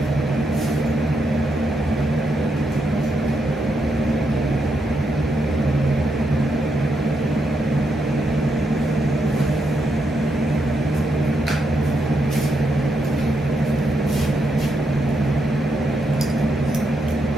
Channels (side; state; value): both; normal; correlation 0.80